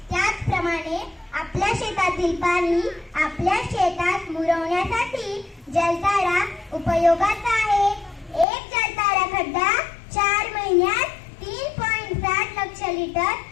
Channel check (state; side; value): drops out; right; at 8.5 s